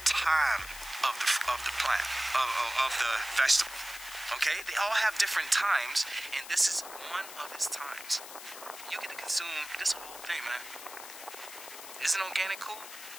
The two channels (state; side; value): noise; left; hiss, 13 dB below the sound